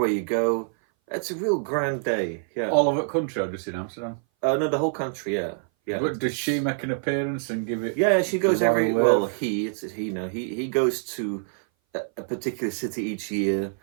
you go. It's a real grand day. Yeah. All over the country or just in Amsterdam? No, the whole country. Yeah. Yeah. But does she make an appearance and give it? Yeah, she goes every. Wave? Well, it's he now. He goes to a particular city each year,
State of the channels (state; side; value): silent; left; 58 dB below the other